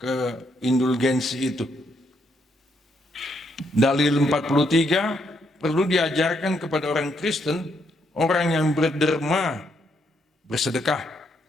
indulgensi itu. Dalil 43, perlu diajarkan kepada orang Kristen, orang yang berderma, bersedekah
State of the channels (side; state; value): both; normal; correlation 0.75